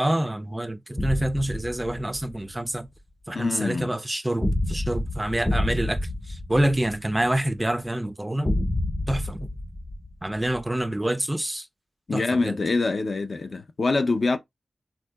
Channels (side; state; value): both; normal; correlation 0.96